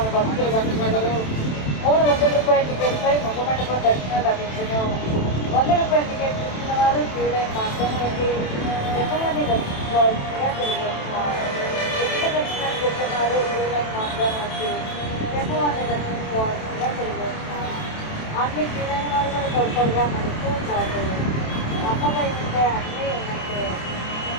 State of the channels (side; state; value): right; late; 27 ms